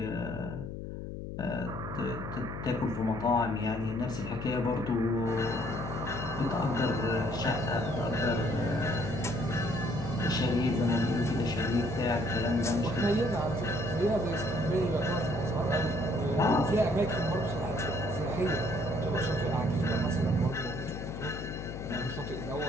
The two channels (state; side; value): noise; left; hum, 7 dB below the sound